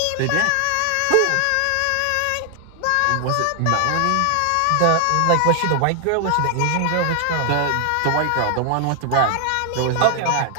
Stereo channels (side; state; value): both; different; correlation 0.00